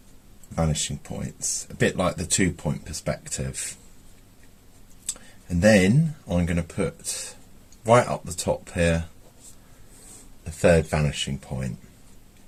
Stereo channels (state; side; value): identical; both; correlation 1.00